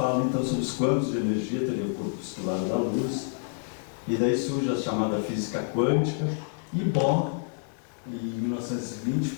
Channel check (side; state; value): right; silent; digital silence